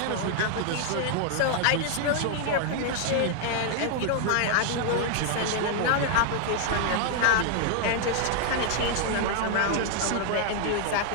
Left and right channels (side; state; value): both; different; correlation 0.00